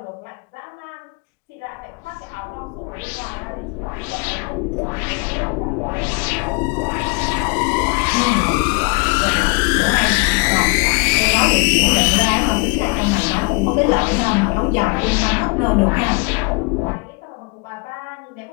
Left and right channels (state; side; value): quieter; right; 29.8 dB